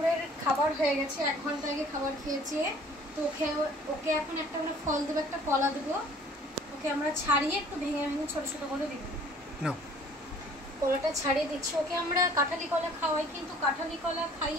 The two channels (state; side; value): normal; both; correlation 0.53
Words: খাবার হয়ে গেছে, 1 ঘন্টা আগে খাবার খেয়েছে। তো ওকে এখন একটা করে ফল দেবো, একটা কলা দেবো। ওকে আমরা ছাড়িয়ে একটু ভেঙে ভেঙে ছোট ছোট করে দিব। কলাটা ছাড়িয়ে দিচ্ছি। ওকে আমরা কাঁঠালি কলা খাওয়াই, কিন্তু কাঁঠালি কলা